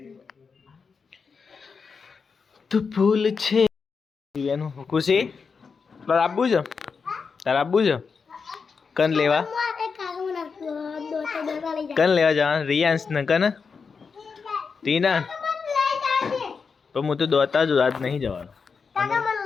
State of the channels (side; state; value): right; quieter; 5.4 dB